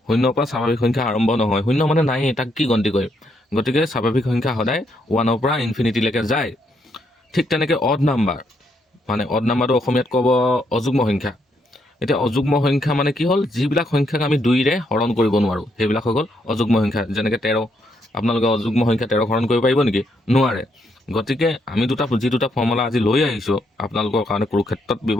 শূন্যৰ পৰা স্বাভাৱিক সংখ্যা আৰম্ভ নহয়। শূন্য মানে নাই, তাক কি গন্তি কৰিম? গতিকে স্বাভাৱিক সংখ্যা সদায় 1ৰ পৰা ইনফিনিটিলৈকে যায়। ঠিক তেনেকৈ অড নাম্বাৰ মানে অড নাম্বাৰটো অসমীয়াত ক'ব অযুগ্ম সংখ্যা। এতিয়া অযুগ্ম সংখ্যা মানে কি হ'ল? যিবিলাক সংখ্যাক আমি 2ৰে হৰণ কৰিব নোৱাৰোঁ সেইবিলাক হৈ গ'ল অযুগ্ম সংখ্যা। যেনেকৈ 13, আপোনালোকে অযুগ্ম সংখ্যা 13 হৰণ কৰিব পাৰিব নেকি? নোৱাৰে। গতিকে আমি যি দুটা ফৰ্মুলা আজি লৈ আহিছোঁ আপোনালোকৰ কাৰণে কুৰুক্ষেত্ৰত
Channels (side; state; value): both; normal; correlation 0.76